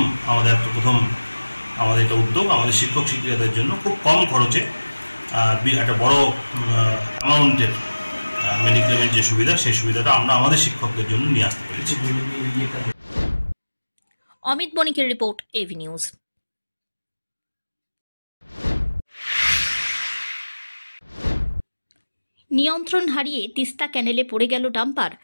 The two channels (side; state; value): both; inverted; correlation -1.00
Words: আমাদের একটা উদ্যোগ। আমাদের শিক্ষক শিক্ষিকাদের জন্য খুব কম খরচে একটা বড় অ্যামাউন্টের মেডিক্লেমের যে সুবিধা, সেই সুবিধাটা আমরা আমাদের শিক্ষকদের জন্য নিয়ে আসতে পেরেছি। অমিত বণিকের রিপোর্ট, এভি নিউজ। নিয়ন্ত্রণ হারিয়ে তিস্তা ক্যানেলে পড়ে গেল ডাম্পার।